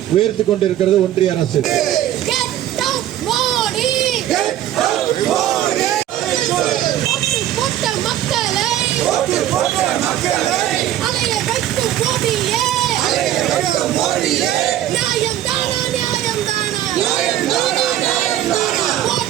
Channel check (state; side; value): quieter; left; 12.3 dB